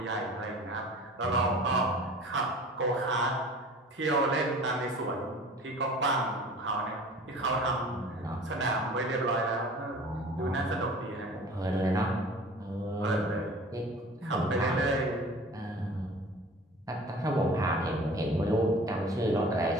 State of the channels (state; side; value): normal; both; correlation 0.43